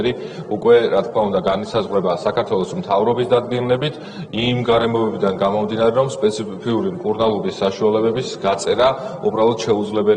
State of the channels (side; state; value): both; identical; correlation 1.00